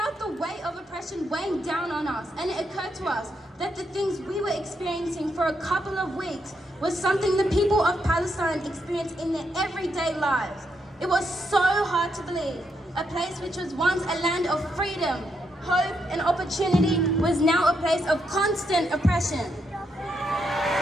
the weight of oppression weighing down on us, and it occurred to us that the things we were experiencing for a couple of weeks was something the people of Palestine experience in their everyday lives. It was so hard to believe. A place which was once a land of freedom, hope, and opportunity was now a place of constant oppression.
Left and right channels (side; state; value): both; normal; correlation 0.80